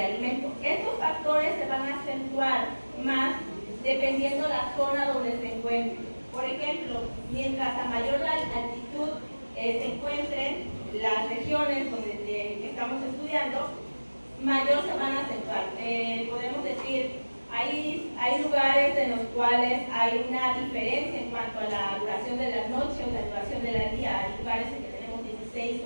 alimentos. Estos factores se van a acentuar más dependiendo la zona donde se encuentren. Por ejemplo, mientras a mayor altitud se encuentren las regiones que estamos estudiando, mayor se van a acentuar. Podemos decir, hay lugares en los cuales hay una diferencia en cuanto a la duración de la noche o la duración del día. Hay lugares en que tenemos 16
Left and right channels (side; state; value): both; inverted; correlation -1.00